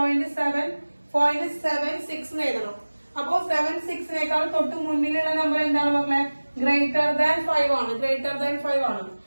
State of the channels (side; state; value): both; inverted; correlation -1.00